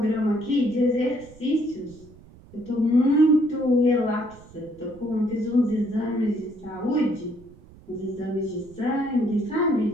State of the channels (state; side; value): noise; right; rumble, 23 dB below the sound